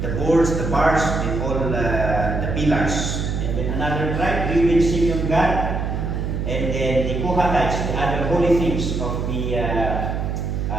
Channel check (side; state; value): right; noise; hum, 2 dB below the sound